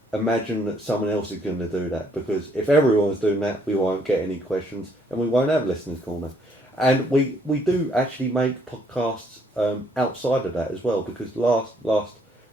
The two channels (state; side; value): normal; both; correlation 0.67